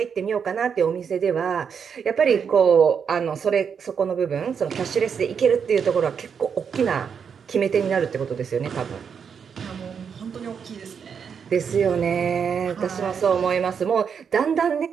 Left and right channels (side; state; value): left; quieter; 6.8 dB